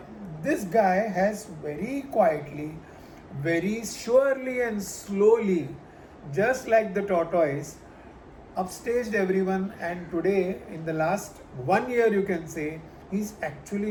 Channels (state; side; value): identical; both; correlation 1.00